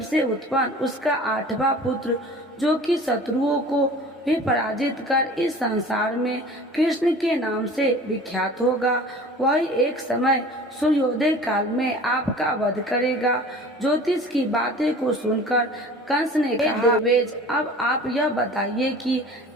से उत्पन्न उसका 8वां पुत्र जो कि शत्रुओं को भी पराजित कर इस संसार में कृष्ण के नाम से विख्यात होगा, वही एक समय सूर्योदय काल में आपका वध करेगा। ज्योतिष की बातें को सुनकर कंस ने कहा, देवेज, अब आप यह बताइए कि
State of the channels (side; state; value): both; normal; correlation 0.43